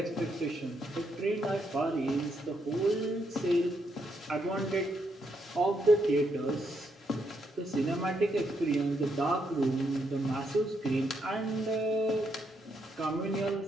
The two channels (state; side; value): normal; both; correlation 0.77